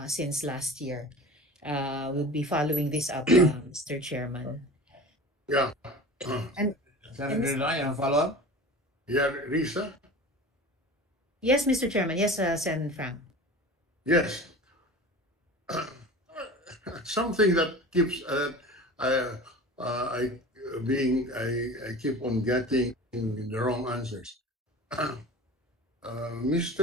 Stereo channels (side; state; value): both; normal; correlation 0.36